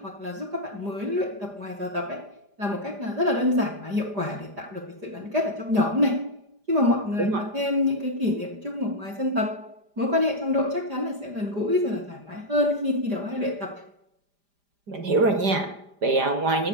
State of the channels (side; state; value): left; late; 5.0 ms